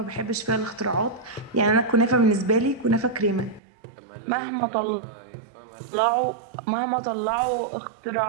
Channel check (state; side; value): drops out; left; at 3.6 s